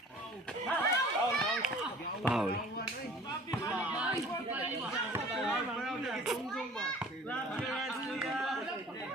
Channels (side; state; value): both; normal; correlation 0.47